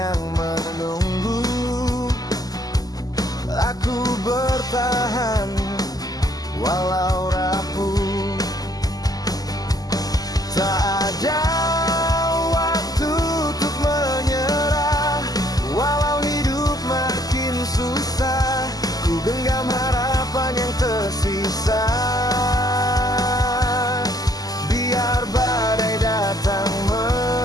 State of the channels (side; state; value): right; late; 0.18 ms